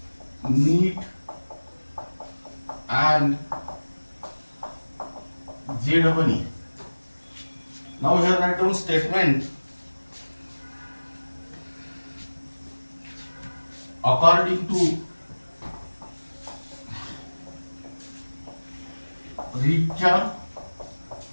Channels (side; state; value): both; inverted; correlation -1.00